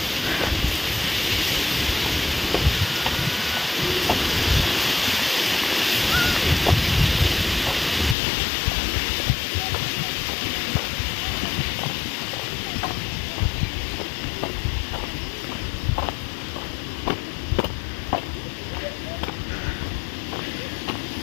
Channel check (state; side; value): drops out; right; at 8.2 s